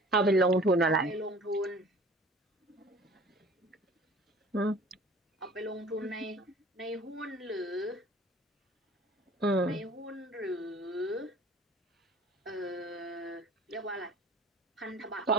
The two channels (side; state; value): both; normal; correlation 0.48